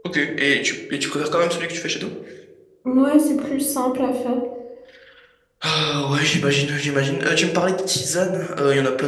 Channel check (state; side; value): identical; both; correlation 1.00